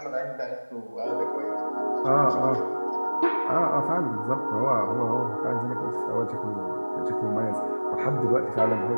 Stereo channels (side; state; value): both; inverted; correlation -1.00